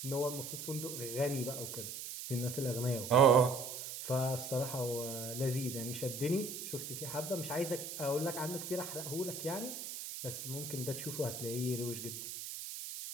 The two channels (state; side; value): noise; right; hiss, 7 dB below the sound